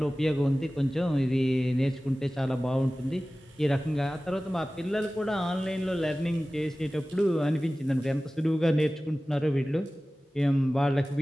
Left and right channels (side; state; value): both; normal; correlation 0.97